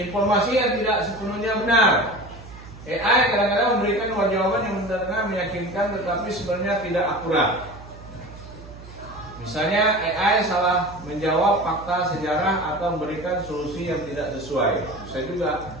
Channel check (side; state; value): right; noise; hum, 17 dB below the sound